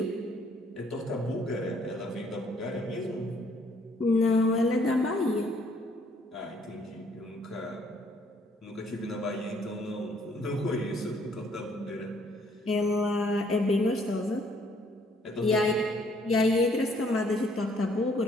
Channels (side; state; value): both; normal; correlation 0.64